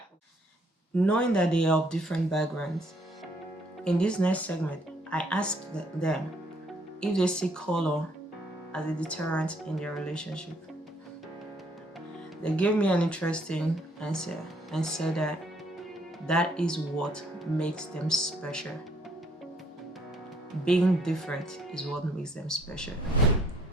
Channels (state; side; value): normal; both; correlation 0.66